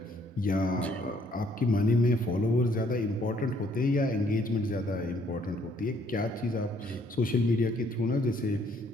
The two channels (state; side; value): normal; both; correlation 0.66